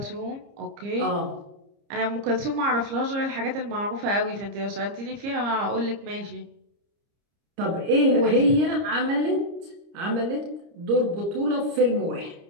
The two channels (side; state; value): left; late; 30 ms